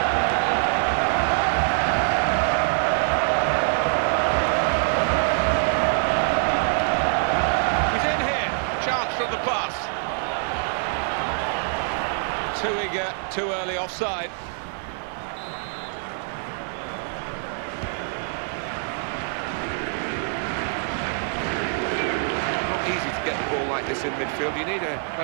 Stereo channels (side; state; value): left; silent; 58 dB below the other